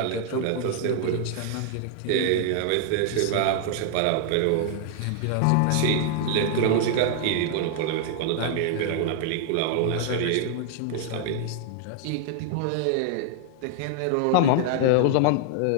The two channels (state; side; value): different; both; correlation -0.01